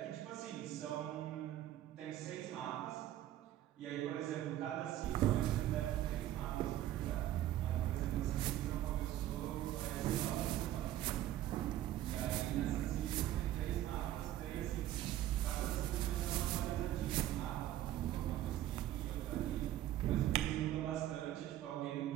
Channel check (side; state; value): left; quieter; 13.2 dB